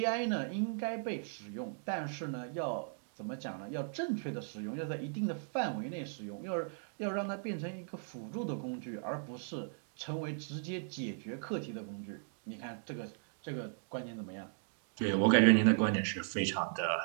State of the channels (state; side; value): silent; left; digital silence